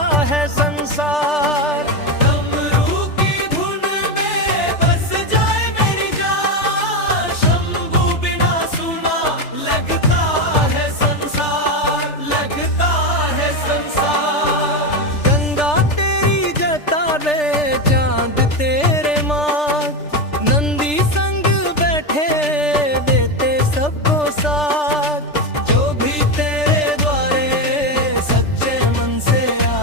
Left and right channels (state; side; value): late; right; 3.4 ms